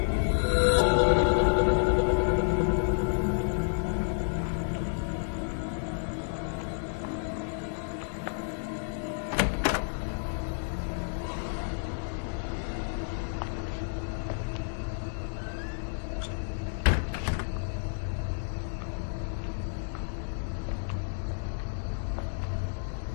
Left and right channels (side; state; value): right; silent; digital silence